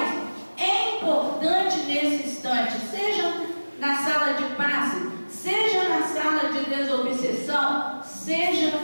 é importante nesse instante, seja na sala de passe, seja na sala de desobsessão,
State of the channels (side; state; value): both; inverted; correlation -1.00